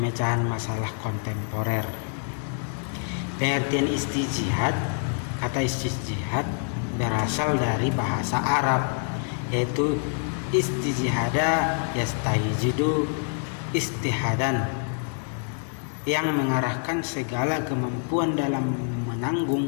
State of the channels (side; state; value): right; silent; 57 dB below the other